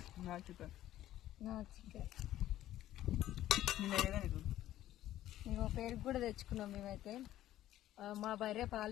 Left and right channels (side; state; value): right; quieter; 13.5 dB